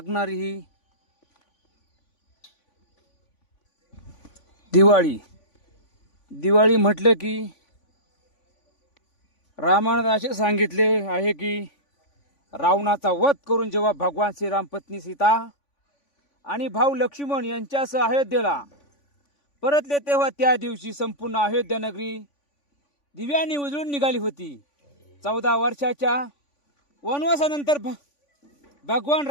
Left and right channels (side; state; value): right; late; 3.5 ms